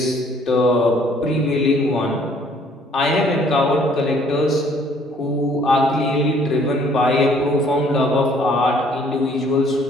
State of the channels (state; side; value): normal; both; correlation 0.60